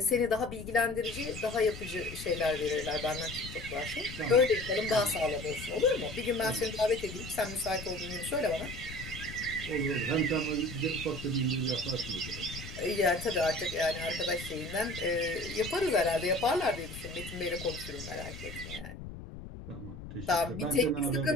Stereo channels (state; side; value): noise; left; rumble, 11 dB below the sound